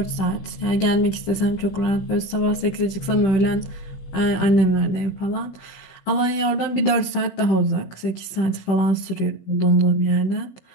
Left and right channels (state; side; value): late; right; 15 ms